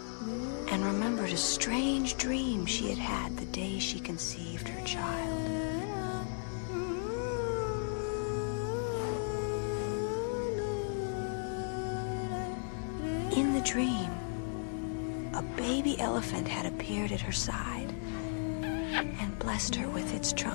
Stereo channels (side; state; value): right; silent; digital silence